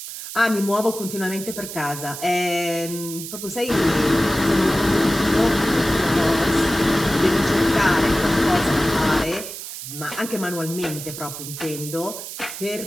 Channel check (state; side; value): noise; right; hiss, 9 dB below the sound